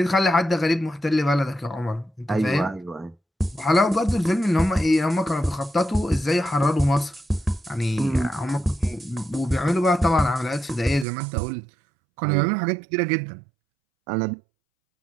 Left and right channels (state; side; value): drops out; left; at 11.1 s